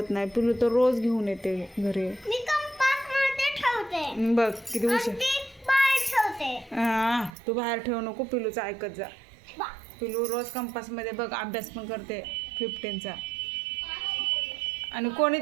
नाही. पिलू तर रोज घेऊन येते घरी. मी कंपास मध्ये ठेवते. बघ किती हुशार. ती बाहेर ठेवते. हां तू बाहेर ठेवू नको. पिलूचं ऐकत जा. बा. पिलू रोज कंपासमध्ये बघ अभ्यास पण करते 15चा. आणि कोणी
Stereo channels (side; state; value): left; drops out; at 7.4 s